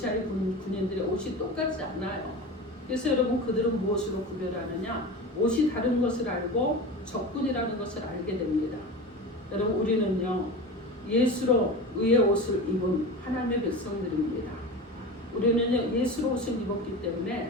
군인들의 옷이 똑같지 않아요. 그래서 여러분 그들은 무엇으로 구별하느냐? 옷이 다른 것을 알고 적군이라는 것을 알게 됩니다. 여러분 우리는요 예수로 의의 옷을 입은 하나님의 백성들입니다. 우리는요 예수로 옷을 입었기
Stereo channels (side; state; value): both; normal; correlation 0.28